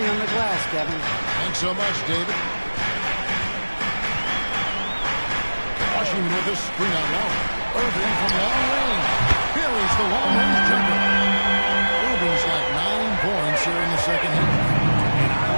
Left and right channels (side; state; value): both; inverted; correlation -1.00